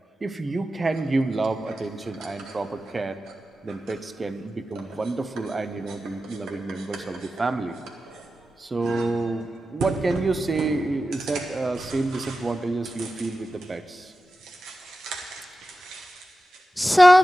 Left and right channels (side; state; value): both; normal; correlation 0.93